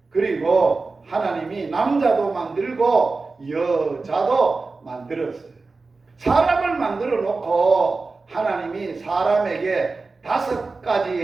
그리고 하나님이 남자도 만들고 여자도 만들었어요. 사람을 만들어 놓고 하나님이 사람에게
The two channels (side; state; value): left; quieter; 3.9 dB